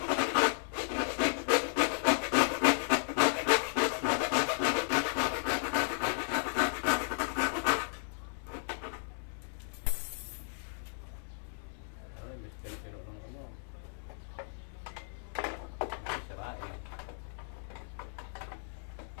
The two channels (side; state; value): right; silent; digital silence